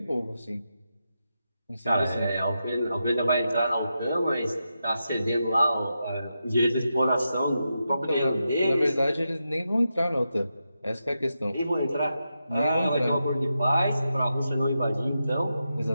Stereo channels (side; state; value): both; inverted; correlation -0.87